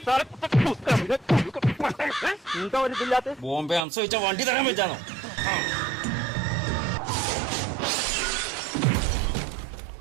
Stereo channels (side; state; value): left; drops out; at 3.8 s